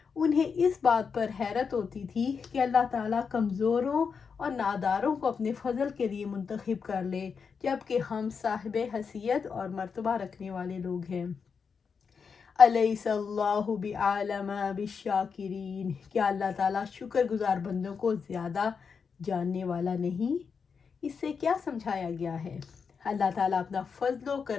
انہیں اس بات پر حیرت ہوتی تھی کہ اللہ تعالیٰ کمزوروں اور ناداروں کو اپنے فضل کے لیے منتخب کر لے، جبکہ ہم صاحب حیثیت اور مرتبہ رکھنے والے لوگ ہیں۔ الیس اللہ بعالم بالشاکرین، کیا اللہ تعالیٰ شکر گزار بندوں کو زیادہ جاننے والا نہیں؟ اس سے کیا سمجھایا گیا ہے؟ اللہ تعالیٰ اپنا فضل و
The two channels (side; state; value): right; quieter; 5.9 dB